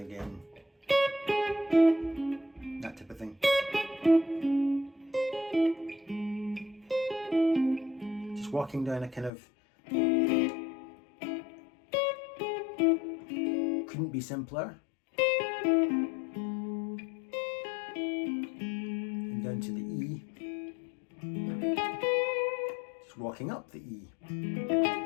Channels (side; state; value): right; drops out; at 9.3 s